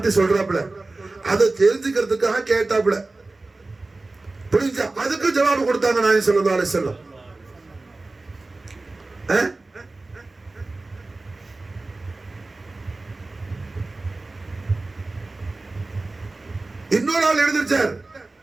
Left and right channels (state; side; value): quieter; left; 3.2 dB